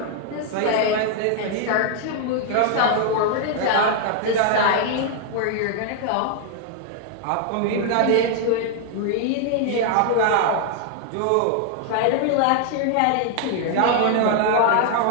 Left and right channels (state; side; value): different; both; correlation 0.00